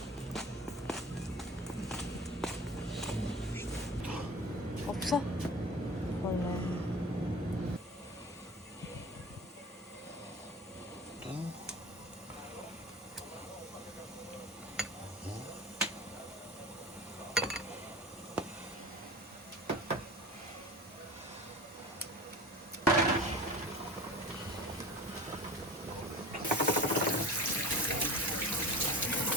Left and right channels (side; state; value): both; normal; correlation 0.37